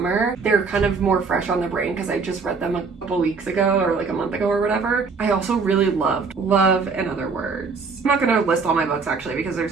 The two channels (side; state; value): left; quieter; 4.8 dB